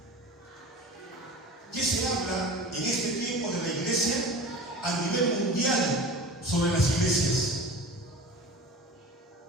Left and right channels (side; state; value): both; normal; correlation 0.36